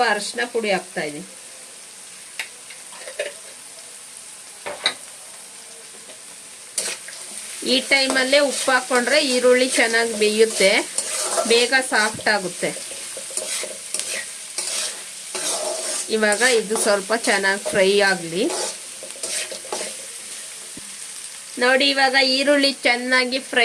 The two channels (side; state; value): both; identical; correlation 1.00